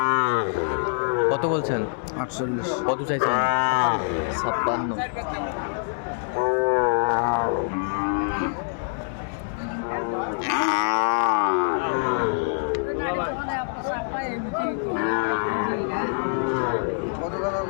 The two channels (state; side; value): silent; right; digital silence